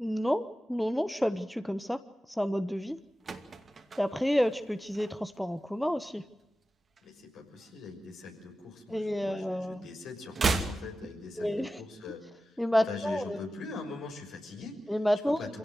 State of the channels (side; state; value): both; normal; correlation 0.94